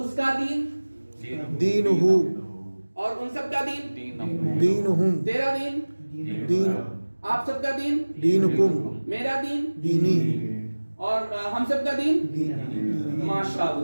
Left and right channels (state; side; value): inverted; both; correlation -1.00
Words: کا دین دین ہو. اور ان سب کا دین دین ہم. تیرا دین دین آپ سب کا دین دین کم. میرا دین دینی. اور ہم سب کا دین.